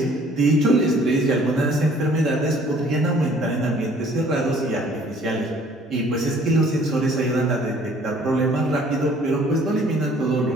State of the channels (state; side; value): normal; both; correlation 0.56